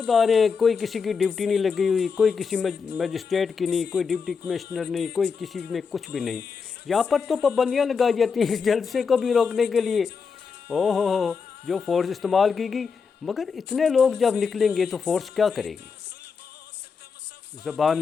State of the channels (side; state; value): right; quieter; 5.6 dB